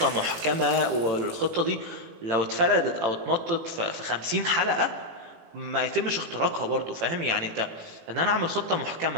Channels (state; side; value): late; left; 18 ms